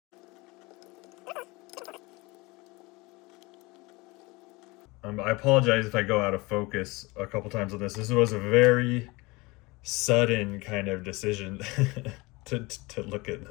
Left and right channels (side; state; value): right; quieter; 23.7 dB